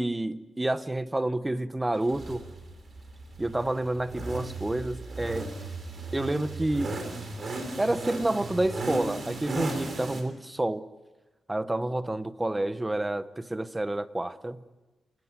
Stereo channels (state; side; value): normal; both; correlation 0.97